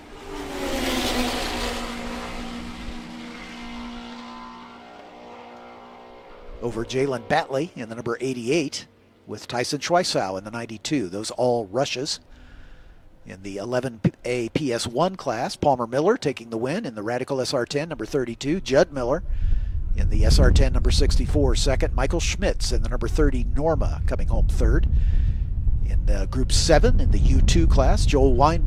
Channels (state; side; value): identical; both; correlation 1.00